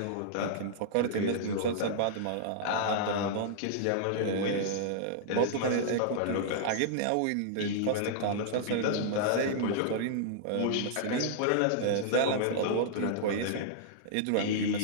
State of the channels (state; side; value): different; both; correlation -0.02